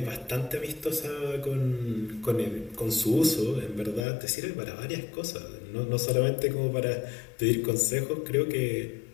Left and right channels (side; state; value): right; drops out; at 4.0 s